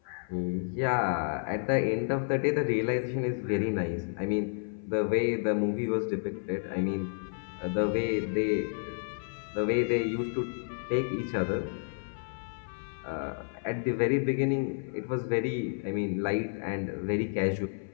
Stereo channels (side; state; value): right; silent; 56 dB below the other